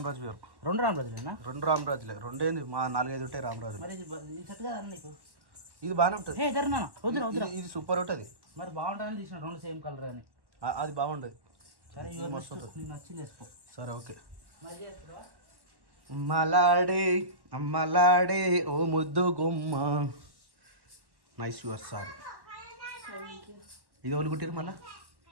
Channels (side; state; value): left; late; 1.1 ms